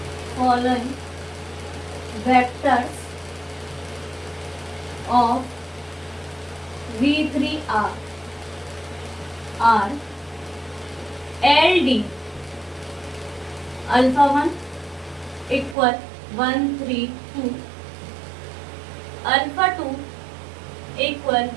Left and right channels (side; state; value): left; drops out; at 15.8 s